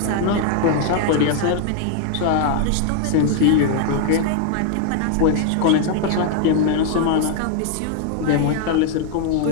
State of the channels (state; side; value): different; both; correlation 0.00